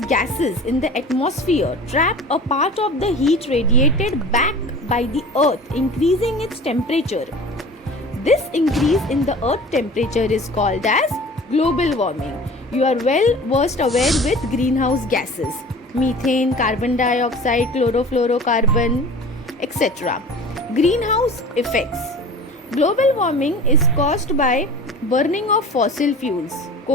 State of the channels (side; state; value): both; normal; correlation 0.40